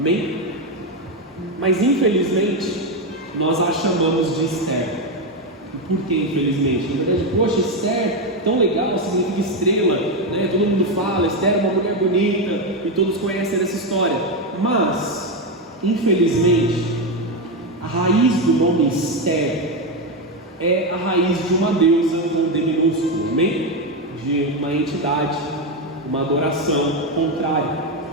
Mas infelizmente nós a chamamos de Esther. E por que infelizmente? Na verdade, poxa, Esther, tão legal, significa estrela, né? Todo mundo fala, Esther é uma mulher bonita, e todos conhecem essa história. Mas, infelizmente, a raiz do nome Esther é a raiz de uma deusa com D minúsculo, amém? De uma entidade, uma adoração contrária.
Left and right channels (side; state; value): both; normal; correlation 0.09